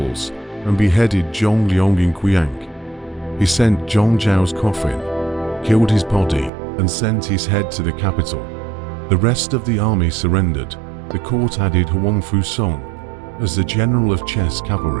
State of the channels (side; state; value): left; drops out; at 6.5 s